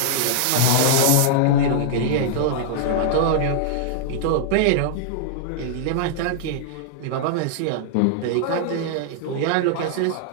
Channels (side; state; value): both; different; correlation -0.01